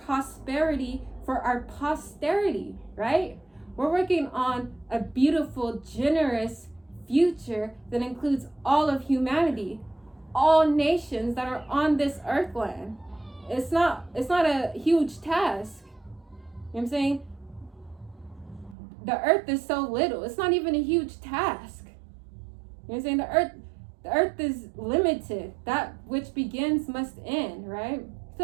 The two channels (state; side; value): drops out; left; at 18.8 s